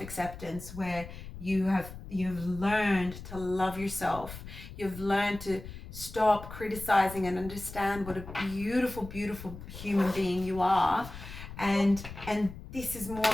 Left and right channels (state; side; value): noise; left; rumble, 13 dB below the sound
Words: where you've learned to love yourself, you've learned to stop criticizing and understand what a beautiful, beautiful human being you are, and this is more